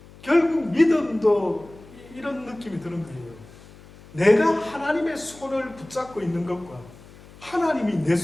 결국 믿음도 이런 느낌이 드는 거예요. 내가 하나님의 손을 붙잡고 있는 것과 하나님이 내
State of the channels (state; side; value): noise; left; hum, 22 dB below the sound